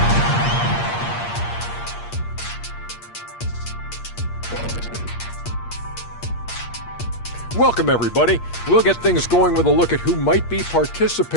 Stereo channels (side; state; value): right; late; 8.5 ms